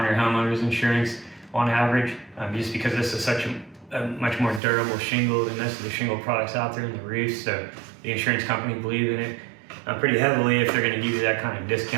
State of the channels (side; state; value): left; drops out; at 4.6 s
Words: your homeowner's insurance on average, just because this is such a much more durable shingle than most of the shingle products out there in the roof. So the insurance company believes in it pretty heavily if they're going to give you that kind of